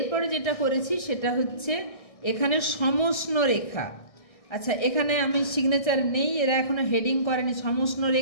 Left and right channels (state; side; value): late; right; 1.6 ms